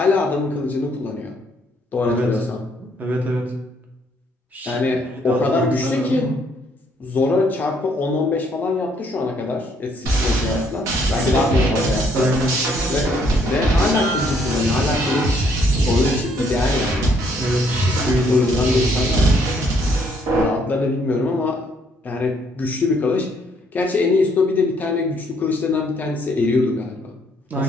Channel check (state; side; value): normal; both; correlation 0.68